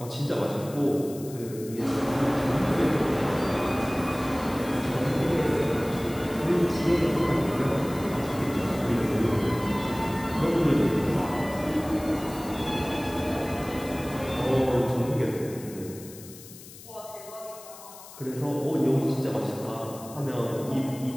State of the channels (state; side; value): noise; left; hiss, 17 dB below the sound